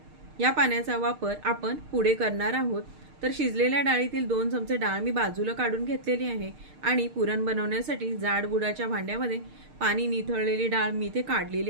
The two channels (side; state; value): left; late; 6.5 ms